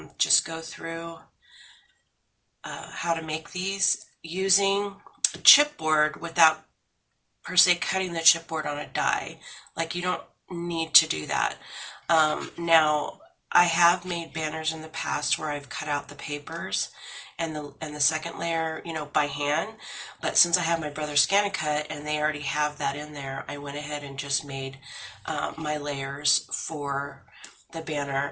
just go through how to make these using a chipboard without per se cutting the chipboard on a die. Like, you don't need to do that. Now, I have made banners in the past where I've cut out the papers and the second layer, by hand. But since I have my brother's scan and cut and they already have that in there, I went ahead and just made my layers for the banner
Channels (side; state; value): both; identical; correlation 1.00